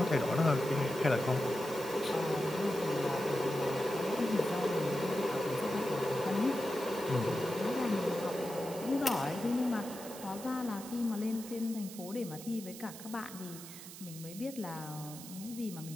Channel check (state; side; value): noise; right; hiss, 13 dB below the sound